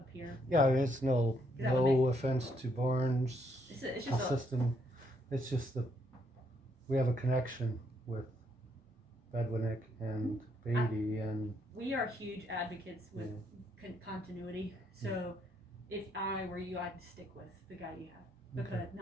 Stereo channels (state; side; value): normal; both; correlation 0.73